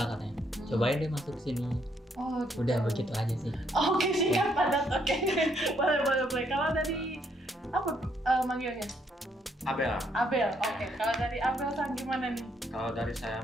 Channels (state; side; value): normal; both; correlation 0.72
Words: Cobain deh masuk kesini. Gitu. Udah begitu aja sih. Oke, siap padat. Boleh. Kalau dari apa manggilnya? Abel. Abel, oke. Kalau dari Abel Sang gimana nih? Kalau dari saya